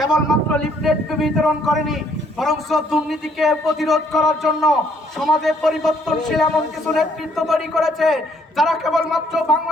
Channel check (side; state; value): both; normal; correlation 0.66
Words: লিফলেট বিতরণ করেনি, বরং দুর্নীতিকে প্রতিরোধ করার জন্য সমাজে পরিবর্তনশীল এমন কিছু নেতৃত্ব তৈরি করেছে যারা কেবলমাত্র